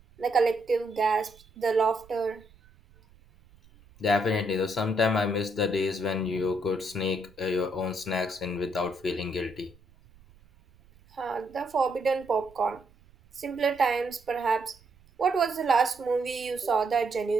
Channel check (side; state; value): right; noise; rumble, 27 dB below the sound